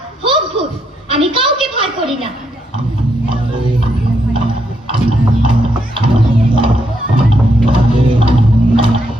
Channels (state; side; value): normal; both; correlation 0.78